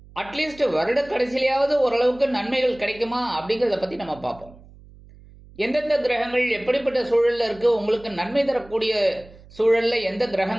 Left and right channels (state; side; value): noise; right; hum, 22 dB below the sound